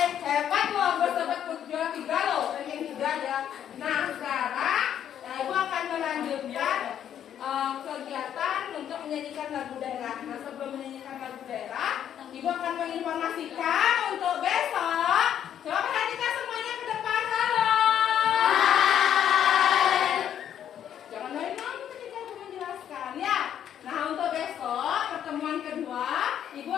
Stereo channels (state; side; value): quieter; right; 9.8 dB